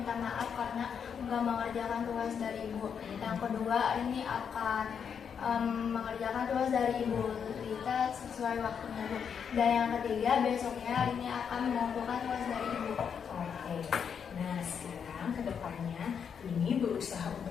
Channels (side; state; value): right; quieter; 7.2 dB